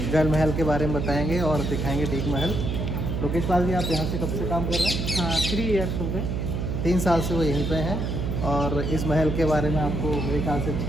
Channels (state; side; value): noise; right; hum, 1 dB below the sound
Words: जल महल के बारे में बताएंगे और दिखाएंगे डीक महल। लोकेश पाल जी, आप यहाँ से कब से काम कर रहे हैं? हाँ, 3 ईयर्स हो गए। 3 साल से वो यहीं पे हैं और इस महल के बारे में आपको मेरे ख्याल से